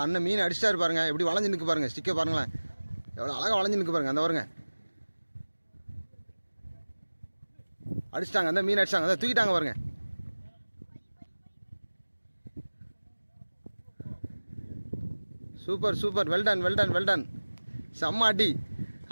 அண்ணன் மீன் அடிச்சிட்டாரு பாருங்க, எப்படி வளைஞ்சு நிற்கு பாருங்க, ஸ்டிக்கை பாருங்களேன் எவ்வளோ அழகாக வளைஞ்சு நிற்கு பாருங்க. அந்த பாருங்க அடிச்சிட்டாங்க, அந்த மீன் அடிச்சிட்டாங்க, அதை தூக்கிட்டாங்க பாருங்க. Super super, well done well done well done, செம்ம அடி.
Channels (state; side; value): inverted; both; correlation -1.00